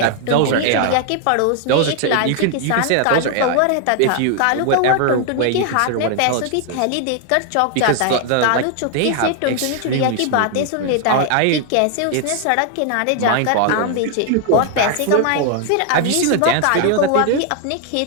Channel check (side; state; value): both; different; correlation 0.00